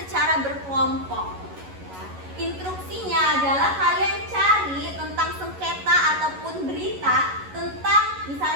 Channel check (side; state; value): left; late; 11 ms